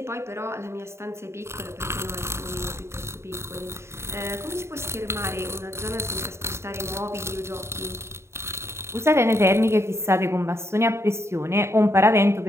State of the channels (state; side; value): late; left; 0.13 ms